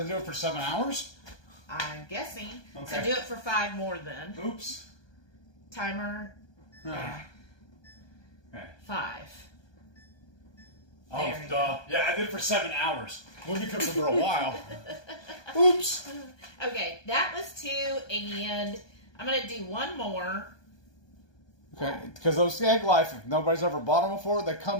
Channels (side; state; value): right; late; 1.2 ms